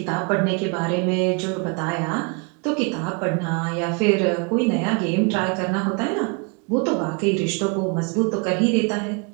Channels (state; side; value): quieter; left; 32.7 dB